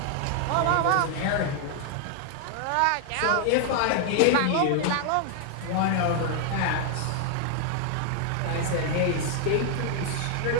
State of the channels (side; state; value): both; different; correlation 0.00